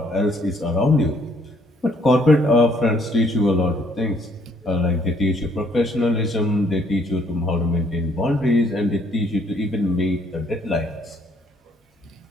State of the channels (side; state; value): both; normal; correlation 0.66